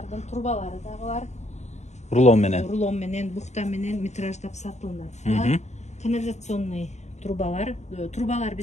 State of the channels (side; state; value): right; late; 0.33 ms